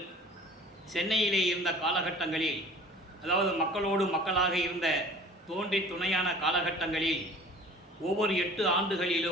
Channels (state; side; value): normal; both; correlation 0.45